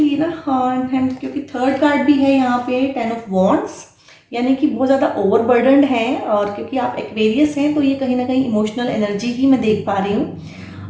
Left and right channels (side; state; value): both; identical; correlation 1.00